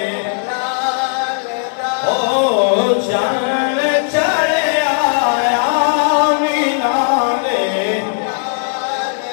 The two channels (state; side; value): silent; right; 69 dB below the other